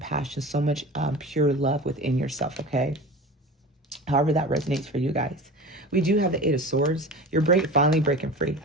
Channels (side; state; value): both; normal; correlation 0.34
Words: so much pure love within yourself, okay? However that resonates for you guys. We do have the 8 of Swords. You're finally breaking free.